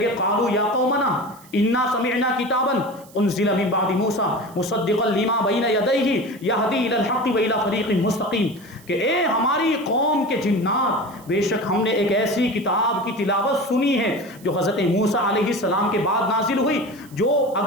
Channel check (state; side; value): noise; right; hiss, 24 dB below the sound